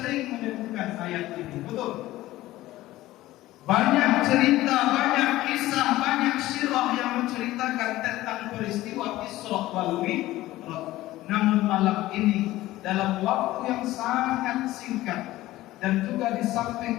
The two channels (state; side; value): quieter; right; 16.5 dB